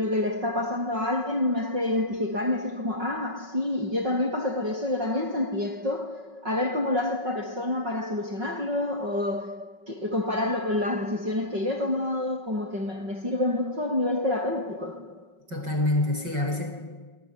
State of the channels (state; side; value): late; left; 5.4 ms